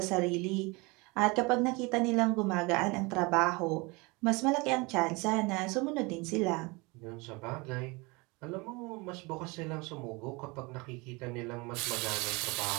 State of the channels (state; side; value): quieter; left; 26.3 dB